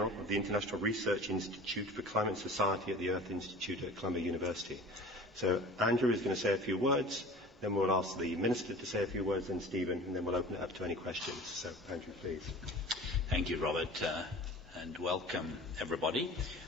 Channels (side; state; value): both; normal; correlation 0.40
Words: of the International Research Institute for Climate and Society at the Earth Institute at Columbia University. So Andrew is going to say a few words, then we'll ask the Minister to say a few words, then Stephen, and then we'll open it up to any questions. So Andrew, please. Thank you, Robert, and welcome everybody.